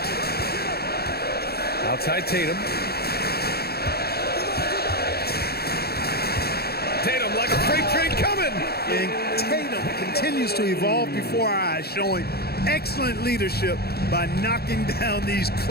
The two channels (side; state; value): right; late; 0.46 ms